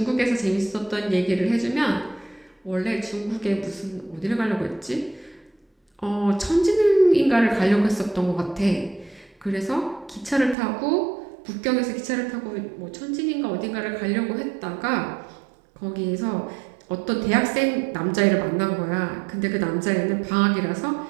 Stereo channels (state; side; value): drops out; left; at 10.6 s